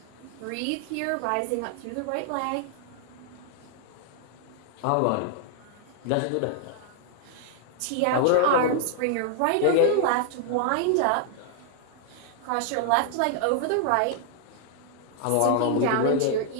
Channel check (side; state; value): both; different; correlation -0.01